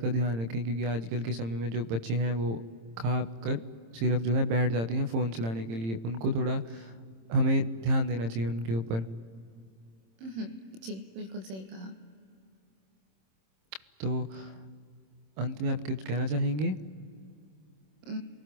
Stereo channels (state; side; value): late; left; 26 ms